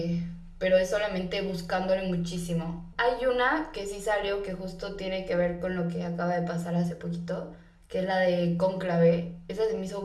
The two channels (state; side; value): identical; both; correlation 1.00